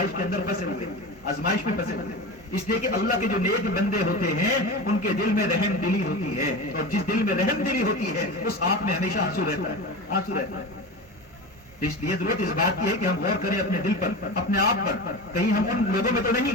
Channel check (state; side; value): normal; both; correlation 0.27